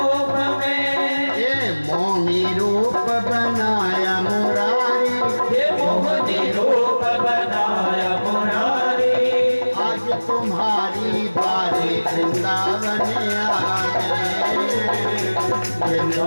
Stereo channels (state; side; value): inverted; both; correlation -1.00